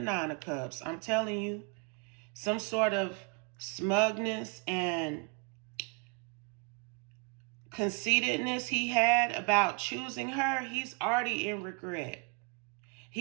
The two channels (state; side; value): quieter; left; 32.9 dB